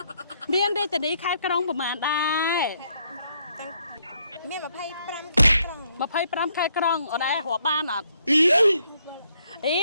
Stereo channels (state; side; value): inverted; both; correlation -0.72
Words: មានរាជធានីខេត្តក្រុងប្រមាណដែរមាន25ខេត្តក្រុង25ខេត្តក្រុងអូនឯងរាប់បានអត់រ